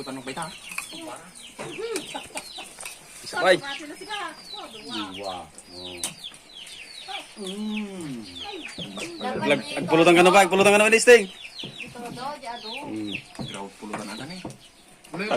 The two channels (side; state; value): both; identical; correlation 1.00